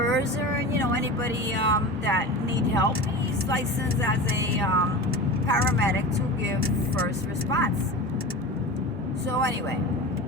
or, anybody that need help. He's licensed as a paramedic to give first response. So anyway,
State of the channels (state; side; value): normal; both; correlation 0.30